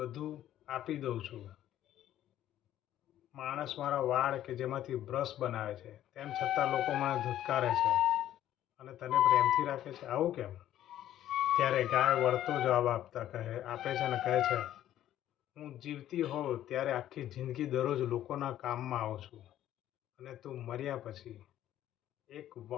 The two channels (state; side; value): quieter; right; 12.3 dB